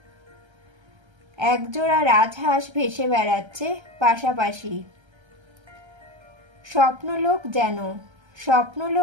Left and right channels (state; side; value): late; left; 1.3 ms